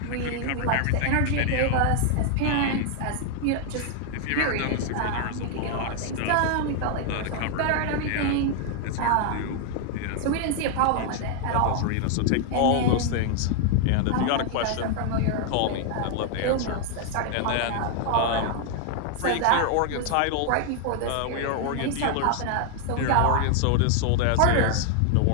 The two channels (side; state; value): both; different; correlation 0.00